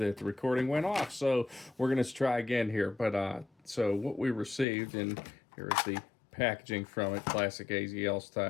the recording went off. So we're gonna try again here. But so what we received, and here's the packaging from it, classic AZL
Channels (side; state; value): right; drops out; at 4.7 s